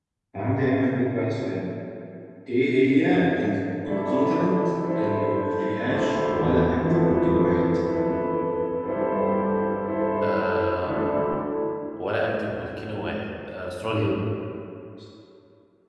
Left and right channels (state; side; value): identical; both; correlation 1.00